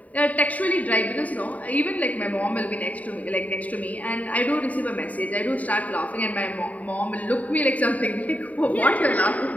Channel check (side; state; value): right; late; 0.071 ms